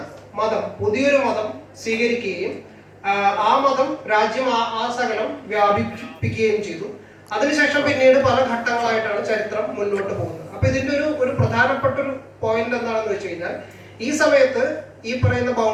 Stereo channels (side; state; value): both; identical; correlation 1.00